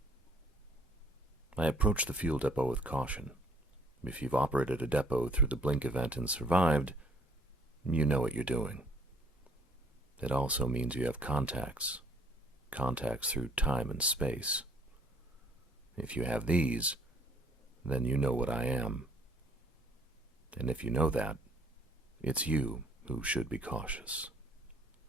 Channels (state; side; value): normal; both; correlation 0.59